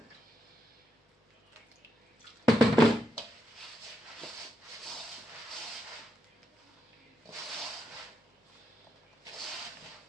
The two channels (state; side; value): normal; both; correlation 0.82